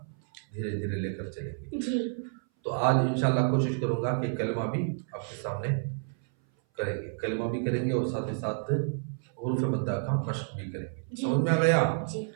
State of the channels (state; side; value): silent; left; 57 dB below the other